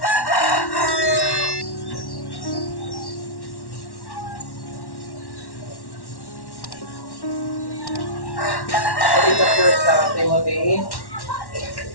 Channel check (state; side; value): late; right; 1.1 ms